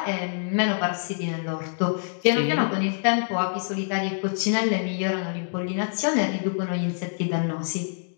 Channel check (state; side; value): silent; right; digital silence